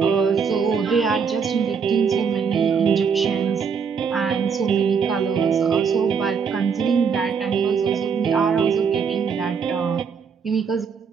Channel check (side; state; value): left; quieter; 6.2 dB